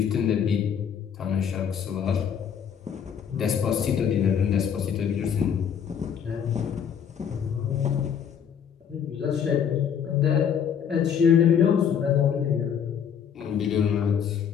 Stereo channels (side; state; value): right; quieter; 8.0 dB